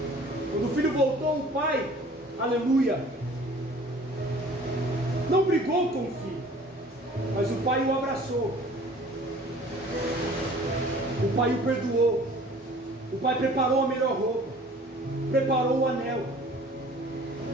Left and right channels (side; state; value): both; normal; correlation 0.49